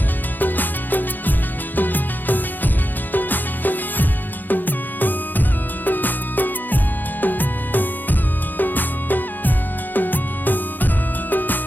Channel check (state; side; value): late; right; 0.088 ms